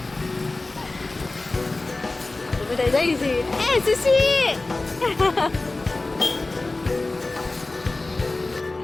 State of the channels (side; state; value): right; quieter; 3.2 dB